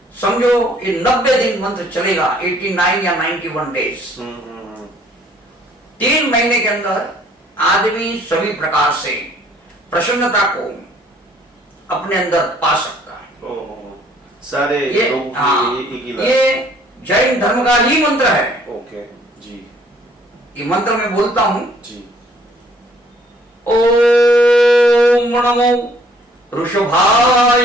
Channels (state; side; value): normal; both; correlation 0.61